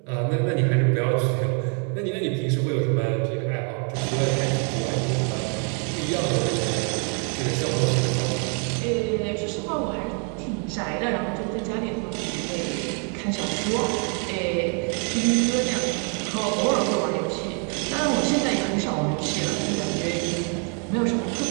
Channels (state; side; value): quieter; left; 39.4 dB